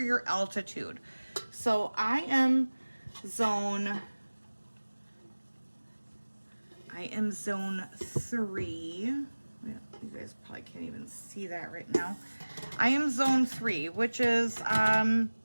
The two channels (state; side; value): inverted; both; correlation -1.00